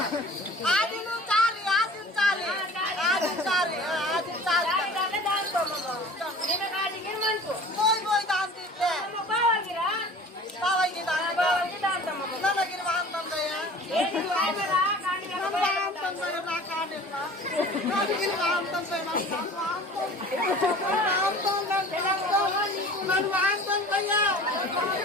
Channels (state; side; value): normal; both; correlation 0.43